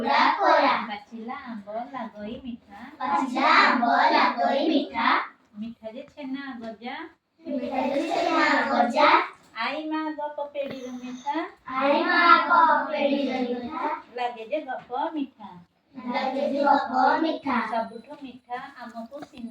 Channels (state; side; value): identical; both; correlation 1.00